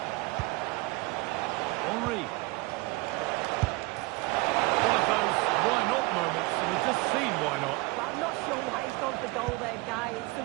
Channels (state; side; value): quieter; left; 23.2 dB